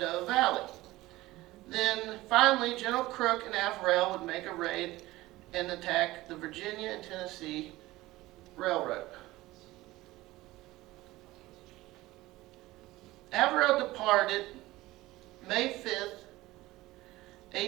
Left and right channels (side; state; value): left; quieter; 18.2 dB